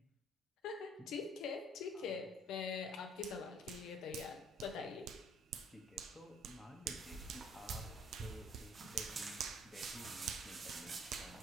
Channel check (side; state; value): both; normal; correlation 0.58